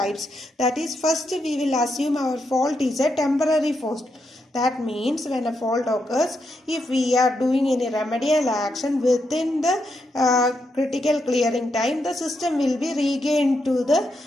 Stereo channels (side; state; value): both; normal; correlation 0.82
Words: That is, first we will assume our fault is a temporary fault. That means when a fault occurs, if we are doing any remedial action within the critical clearing time, the system will be regained to the